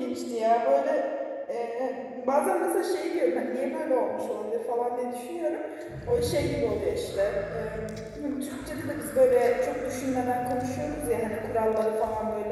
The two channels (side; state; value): both; identical; correlation 1.00